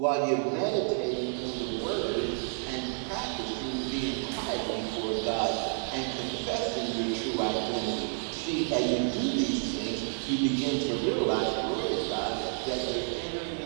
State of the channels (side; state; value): left; silent; digital silence